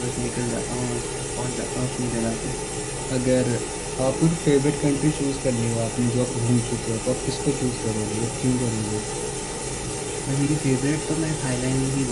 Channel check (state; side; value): identical; both; correlation 1.00